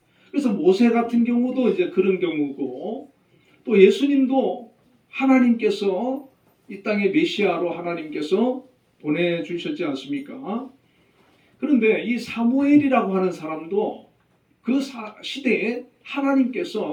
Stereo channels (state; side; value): identical; both; correlation 1.00